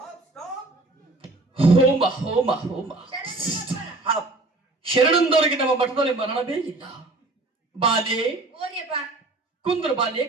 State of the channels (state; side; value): quieter; left; 3.1 dB